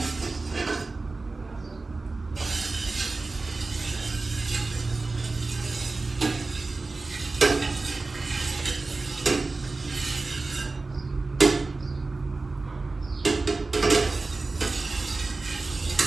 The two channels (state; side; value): quieter; left; 3.6 dB